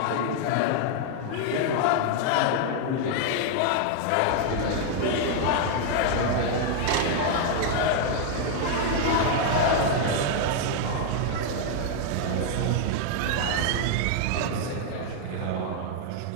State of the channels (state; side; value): different; both; correlation 0.00